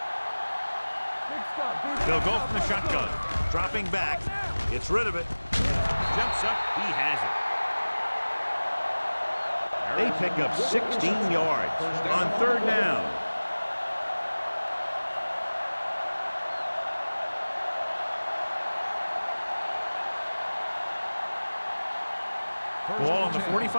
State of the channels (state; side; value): inverted; both; correlation -1.00